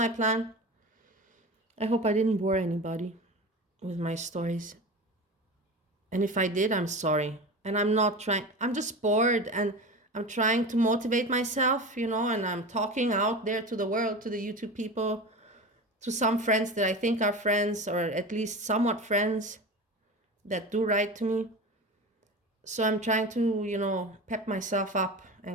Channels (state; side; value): normal; both; correlation 0.30